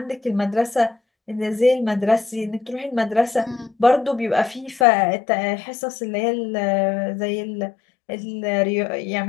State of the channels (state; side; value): drops out; right; at 4.9 s